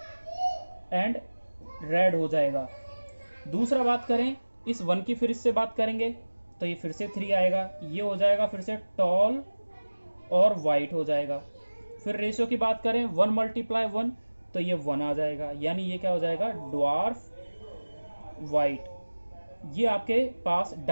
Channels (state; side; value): inverted; both; correlation -1.00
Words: एंड रेड हो जाएगा। दूसरा बात करें, इस 1 की फिर इससे बात करेंगे तो ये फिर से 3 आएगा, ये हो जाएगा फिर से टॉल और वाइट हो जाएगा। फिर रेशियो की बात करें 1 × 1 तो ये 1 आ जाएगा, यानी ये क्या हो जाएगा, ड्वार्फ वाइट। ये आपके पास